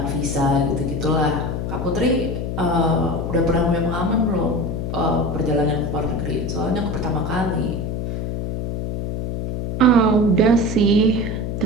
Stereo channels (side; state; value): left; noise; hum, 3 dB below the sound